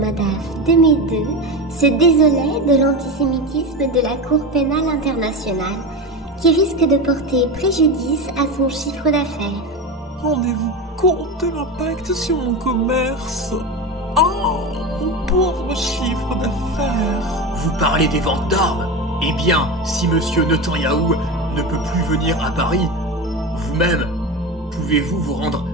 de Médeux, se désolait de l'antisémitisme de la Cour pénale internationale, qui risque de porter préjudice à son chiffre d'affaires. Rendez-vous compte de l'impact sur mon commerce. Oh, mon pauvre chiffre d'affaires. Vous parlez des ventes d'armes? Eh bien, si monsieur Netanyahou ne peut plus venir à Paris, vous-même, pouvez-vous vous rendre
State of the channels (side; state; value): both; normal; correlation 0.22